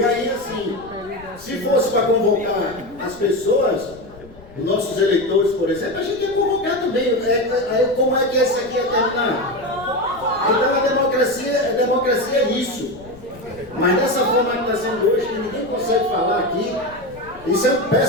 aí, assim, se fosse para convocar as pessoas, os nossos eleitores, por exemplo, a gente ia convocar também. Aí, como é que esse aqui ia terminar? Então a democracia é isso. Mas dessa forma que está sendo hoje, que ninguém consegue falar aqui, isso é um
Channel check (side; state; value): left; noise; rumble, 21 dB below the sound